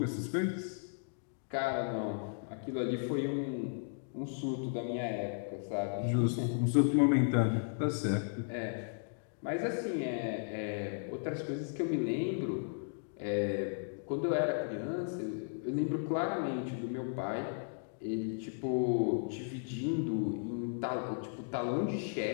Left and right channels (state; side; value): silent; right; digital silence